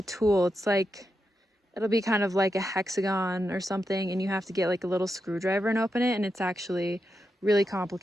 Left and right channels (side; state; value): both; normal; correlation 0.86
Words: tool. It's it'll be kind of like a hexagon or something, and you have to get a little screwdriver and open it, and it's actually really